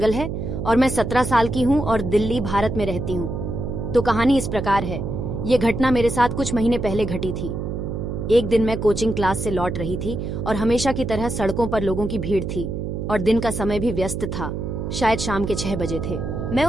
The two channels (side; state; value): right; noise; hum, 4 dB below the sound